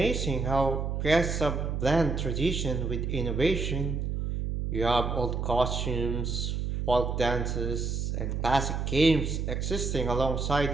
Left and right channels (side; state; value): right; noise; hum, 2 dB below the sound